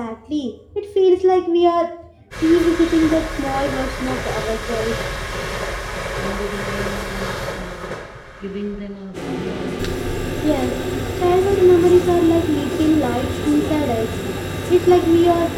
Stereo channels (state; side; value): identical; both; correlation 1.00